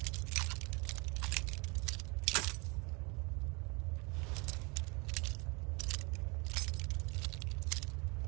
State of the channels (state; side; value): quieter; left; 29.4 dB